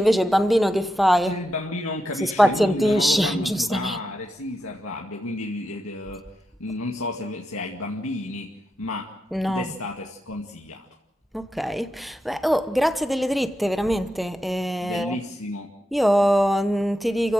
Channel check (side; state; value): both; normal; correlation 0.87